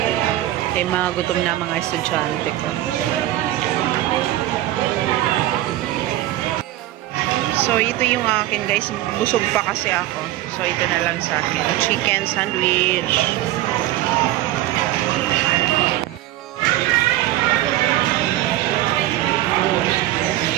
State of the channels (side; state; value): left; quieter; 15.1 dB